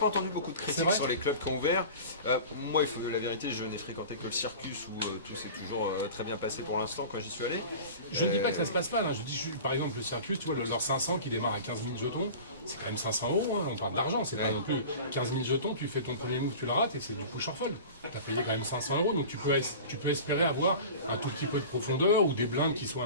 entendu beaucoup de C'est critiques vrai sur les clubs qui ont ouvert. Moi, il faut que la vérité, je n'ai fréquenté que le Circus où tout s'est toujours très bien passé pour l'instant quand j'y suis allé. Je ne dis pas que ça se passe mal, hein. Je dis par exemple le Circus, tu vois, leur 500 qui démarre à 15 000 jetons, c'est quand même 500 €, hein. On parle d'argent, c'est pas non plus 15 000 jetons, tu fais ton premier move, tu le rates et c'est du push or fold. Tu as payé quand même 500 €, donc tu peux espérer avoir un tout petit peu de profondeur ou des blindes qui soient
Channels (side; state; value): both; inverted; correlation -0.37